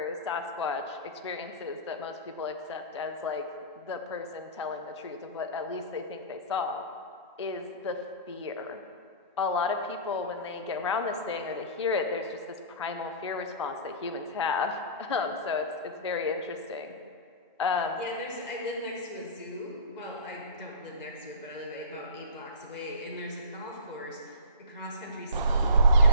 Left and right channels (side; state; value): both; inverted; correlation -0.34